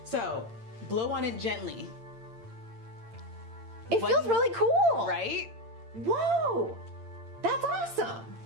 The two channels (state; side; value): late; left; 8.8 ms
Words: So, blow on it gently. It feels really cool. Right? Whoa. That's awesome.